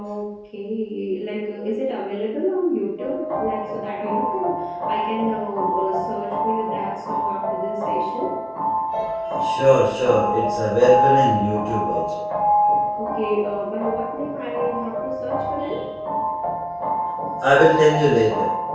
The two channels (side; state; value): both; identical; correlation 1.00